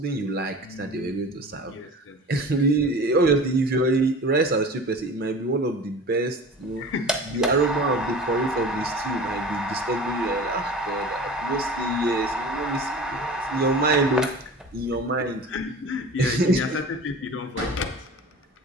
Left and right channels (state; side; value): normal; both; correlation 0.38